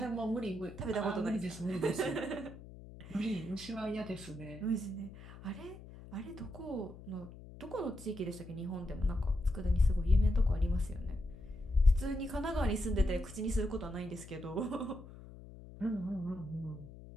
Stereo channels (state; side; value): noise; left; hum, 16 dB below the sound